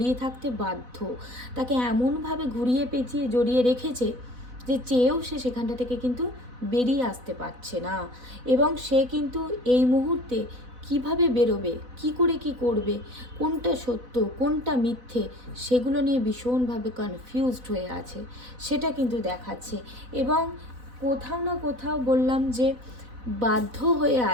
থাকতে বাধ্য, তাকে এমনভাবে ঘুরিয়ে পেঁচিয়ে জড়িয়ে রেখেছে যে চেয়েও সে সেখানটা থেকে কিন্তু বেরিয়ে আসতে পারছে না। এবং সে কিন্তু এই মুহূর্তে কিভাবে বেরোবে, কি করে কি করবে, কোনটা সত্য কোনটা মিথ্যে, সেগুলো নিয়ে ভীষণভাবে কনফিউজড হয়ে আছে, সেটা কিন্তু দেখাচ্ছে। এবং কোথাও না কোথাও বললাম যে বাধ্য হয়ে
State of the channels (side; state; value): left; late; 4.0 ms